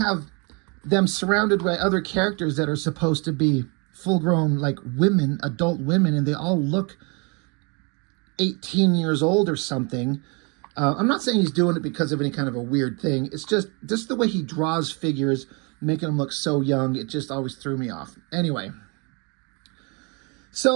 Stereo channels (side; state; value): left; quieter; 32.1 dB